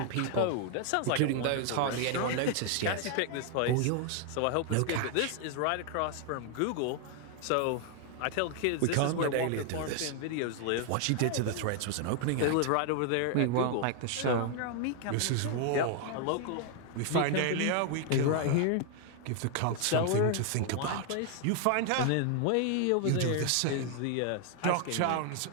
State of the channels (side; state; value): both; different; correlation 0.00